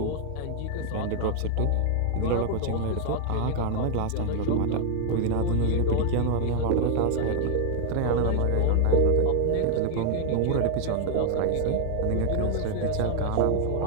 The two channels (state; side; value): different; both; correlation 0.00